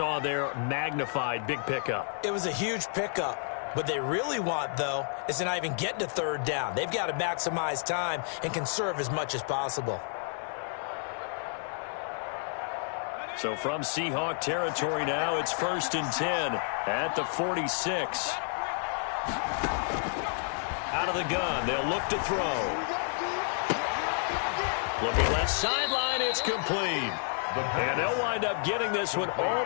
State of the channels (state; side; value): silent; right; 58 dB below the other